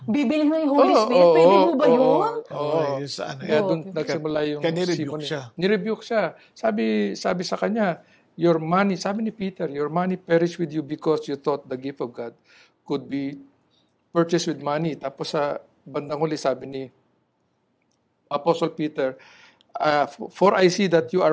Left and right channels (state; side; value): identical; both; correlation 1.00